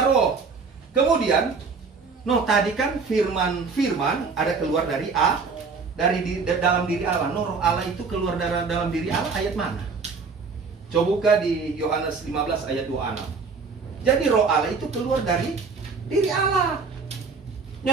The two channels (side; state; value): left; quieter; 4.8 dB